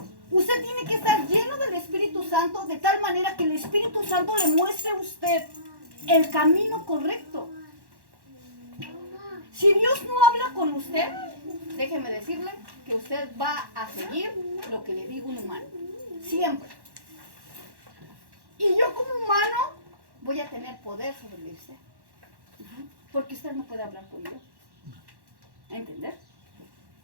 Usted tiene que estar lleno del Espíritu Santo de tal manera que el Espíritu Santo le muestre a usted el camino correcto. Si Dios no habla con usted, déjeme decirle que usted va a seguir lo que le diga un humano. Siempre. Y yo como humano voy a tener poder sobre usted. Porque usted no puede hablar con Dios. ¿Entender?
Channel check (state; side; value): late; left; 1.1 ms